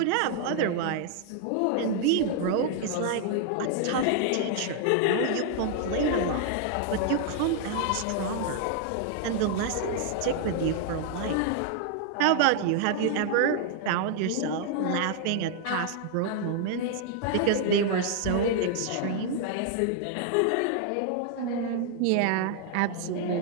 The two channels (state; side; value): different; both; correlation 0.00